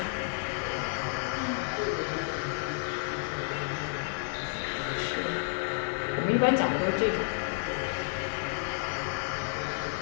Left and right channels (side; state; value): right; silent; digital silence